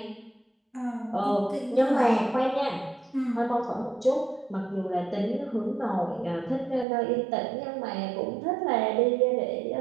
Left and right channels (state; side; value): drops out; left; at 6.9 s